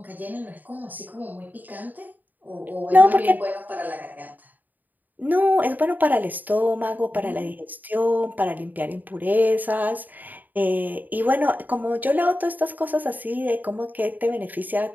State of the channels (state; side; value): late; left; 0.085 ms